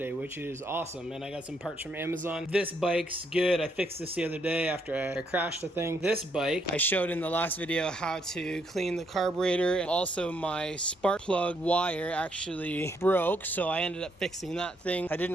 which is awesome. And I got some parts from Amazon. This bike's good. I fixed this the other day after I crashed the thing. This bike, I showed in the last video how to clean the carburetor. Also my spark plug wire actually broke, so I ended up fixing that thing. I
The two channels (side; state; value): both; normal; correlation 0.74